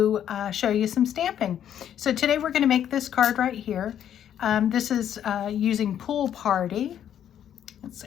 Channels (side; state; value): right; quieter; 9.9 dB